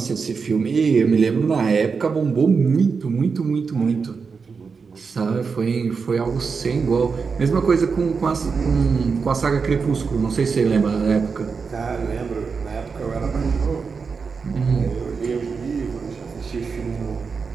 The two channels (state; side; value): quieter; left; 5.2 dB